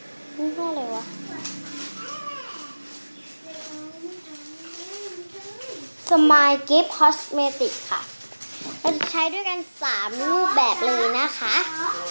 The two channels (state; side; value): inverted; both; correlation -1.00